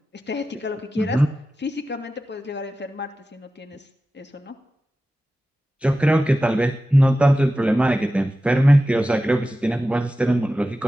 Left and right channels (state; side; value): normal; both; correlation 0.94